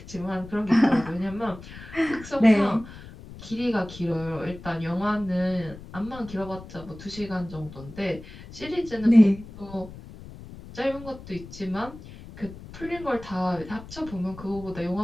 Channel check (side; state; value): left; noise; rumble, 15 dB below the sound